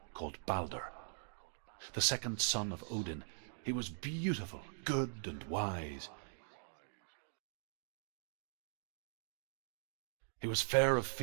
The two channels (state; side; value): silent; left; digital silence